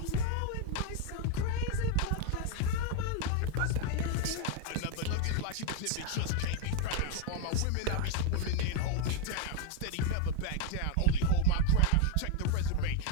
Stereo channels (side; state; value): both; different; correlation 0.01